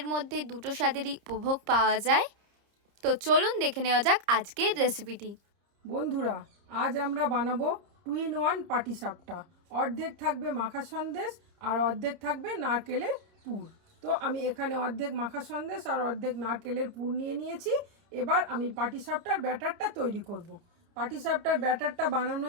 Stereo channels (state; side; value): late; left; 30 ms